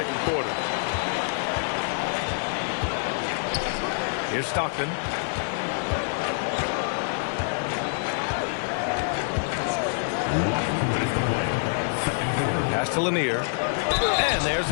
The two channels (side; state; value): right; silent; digital silence